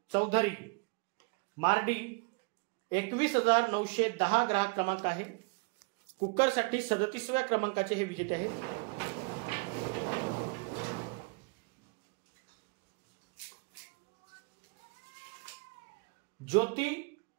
चौधरी मार्डी 21,910 ग्राहक क्रमांक आहे. कुकरसाठी 37व्या क्रमांकाचे हे विजेते आहेत. ज्योती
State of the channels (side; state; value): left; quieter; 31.4 dB